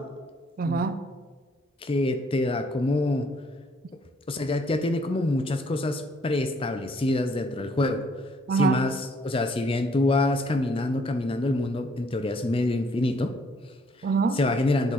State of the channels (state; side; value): normal; both; correlation 0.65